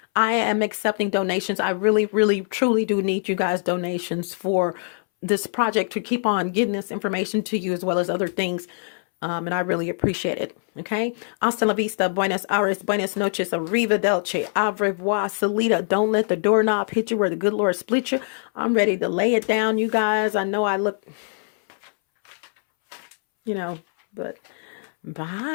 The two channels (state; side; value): silent; right; 62 dB below the other